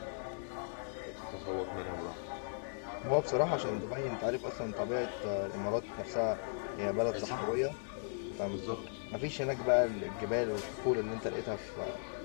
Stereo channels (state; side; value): silent; right; digital silence